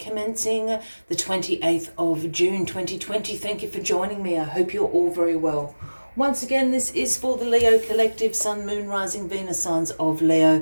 the 28th of June 2020. Thank you for joining me. I hope you're all very well. Once again, this is for the Leo Collective, Sun, Moon, Rising, Venus signs of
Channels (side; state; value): both; inverted; correlation -1.00